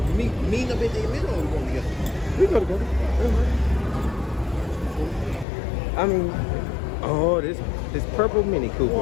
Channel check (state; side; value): drops out; right; at 5.5 s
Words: Meet up in the middle or we going together? We go together. I mean, oh, this purple Mini